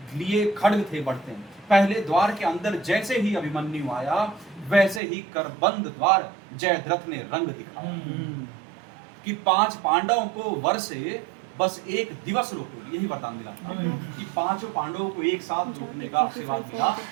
लिए खड्ग थे बढ़ते। पहले द्वार के अंदर जैसे ही अभिमन्यु आया, वैसे ही करबंद द्वार जयद्रथ ने रंग दिखाया कि 5 पांडवों को वर्षे बस एक दिवस रोको। यही वरदान मिला कि 5 पांडवों को एक साथ रोकने का आशीर्वाद मिला,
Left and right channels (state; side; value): drops out; left; at 5.0 s